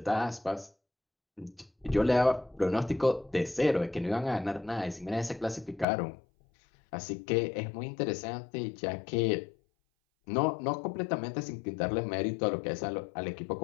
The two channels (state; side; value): drops out; right; at 5.9 s